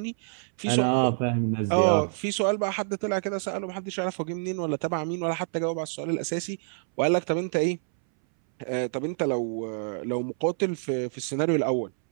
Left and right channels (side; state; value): left; silent; 60 dB below the other